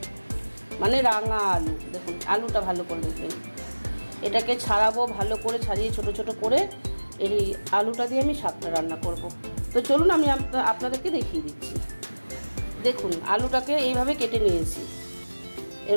মানে রাঙা আলু। দেখুন আলুটা ভালো করে দেখবেন, এটাকে ছাড়াবো ভালো করে, ছাড়িয়ে ছোট ছোট করে এই আলুটা দিয়ে আমি শাকটা রান্না করব। তো চলুন আমি আপনাদেরকে দেখিয়ে দিচ্ছি। দেখুন আলুটাকে এইভাবে কেটে নিয়েছি,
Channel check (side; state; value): both; inverted; correlation -1.00